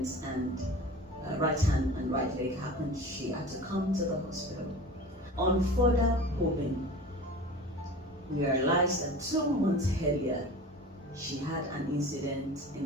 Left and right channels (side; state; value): both; normal; correlation 0.37